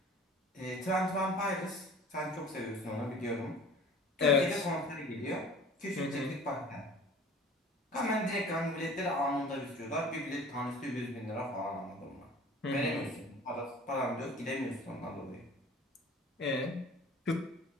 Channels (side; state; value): both; normal; correlation 0.44